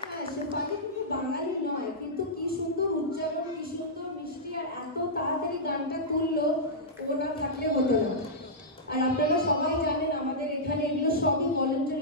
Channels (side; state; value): both; normal; correlation -0.12